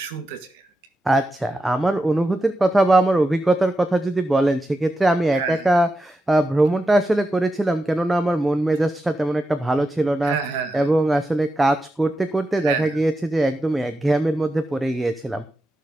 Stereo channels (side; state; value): both; normal; correlation 0.88